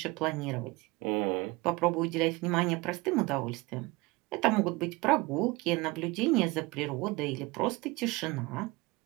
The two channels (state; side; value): quieter; left; 23.4 dB